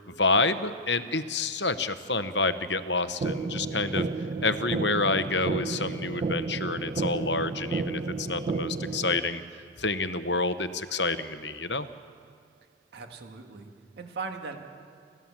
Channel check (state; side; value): normal; both; correlation 0.03